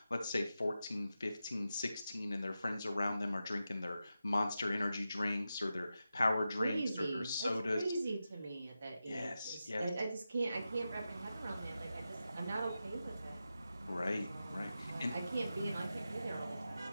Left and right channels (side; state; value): both; inverted; correlation -0.91